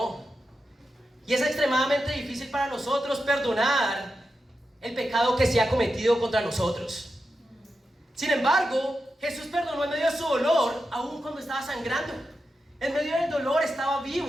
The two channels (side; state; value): both; normal; correlation 0.89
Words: Y es extremadamente difícil para nosotros perdonar el pecado que se ha cometido contra nosotros. Sin embargo, Jesús perdonó en medio de su dolor, aún cuando estaba sangrando. En medio del dolor estaba